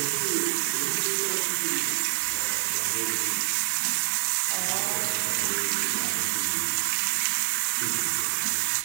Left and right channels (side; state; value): left; silent; 60 dB below the other